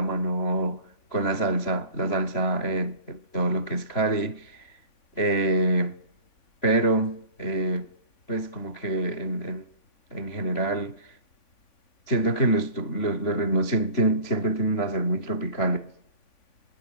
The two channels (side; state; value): right; late; 3.5 ms